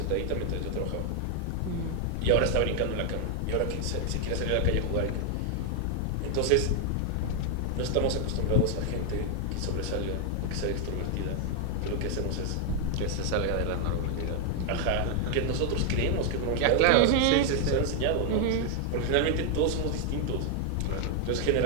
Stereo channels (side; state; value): both; different; correlation 0.00